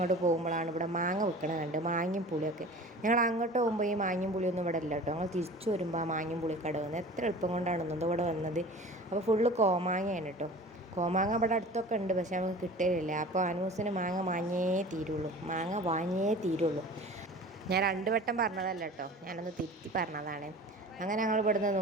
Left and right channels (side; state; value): both; normal; correlation 0.40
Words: പോകുമ്പോഴാണ് ഇവിടെ മാങ്ങ വിൽക്കണ കണ്ട്, മാങ്ങയും പുളിയൊക്കെ. ഞങ്ങൾ അങ്ങോട്ട് പോകുമ്പോൾ ഈ മാങ്ങയും പുളിയൊന്നും ഇവിടെ ഇല്ല കേട്ടോ. ഞങ്ങൾ തിരിച്ചു വരുമ്പോൾ ആ മാങ്ങയും പുളിക്കട വന്ന് എത്ര എളുപ്പം കൊണ്ടാണെന്നോ ഇവിടെ വന്നത്. അപ്പോൾ ഫുള്ള് കോമാങ്ങയാണ് കേട്ടോ. കോമാങ്ങ ഇവിടെ അടുത്തൊക്കെ ഉണ്ട്, പക്ഷെ നമുക്ക് കിട്ടലില്ല. അപ്പോൾ അനൂസിന് മാങ്ങ വാങ്ങിയേ തീരുള്ളൂ. ഞാൻ 2 വട്ടം പറഞ്ഞതല്ല കേട്ടോ, ഞാനൊന്ന് തിരുത്തി പറഞ്ഞതാണ്. അങ്ങനെ ഞങ്ങൾ ഇവിടുന്ന്